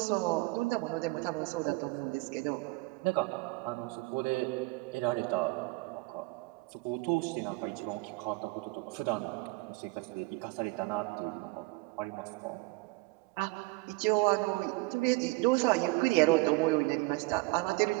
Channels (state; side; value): quieter; left; 24.7 dB